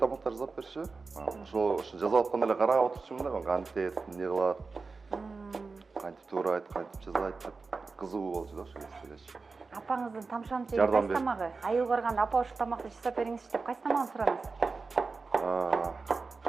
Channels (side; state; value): left; quieter; 4.2 dB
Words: жасап берчү. Ошо жасап атканда эле карап отурчумун да, кантет, эмне кылат, кантип туурайт, кантип жасайт деп кызыгуу болчу да ошо кезде. Апаңыздын тамшанчы кайсы тамагы? Айыл барганда апа ошол тамакты жасап бериңизчи деп кайсы тамагын сураныңыз?